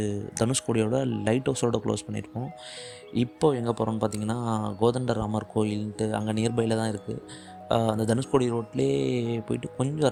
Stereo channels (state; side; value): identical; both; correlation 1.00